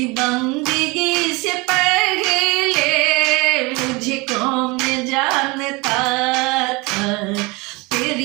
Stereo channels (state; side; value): quieter; left; 25.5 dB